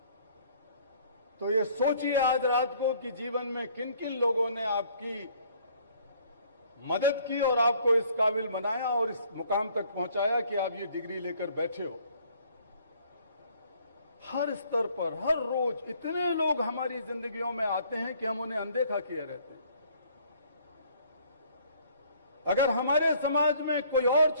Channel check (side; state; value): both; inverted; correlation -0.59